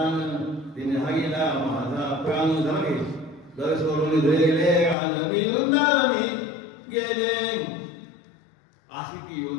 तिने हागीला माझा प्राण झाले घर सोडून जाईले रान मी वृंदावनी गेले. अशी ती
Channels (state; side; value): drops out; right; at 5.0 s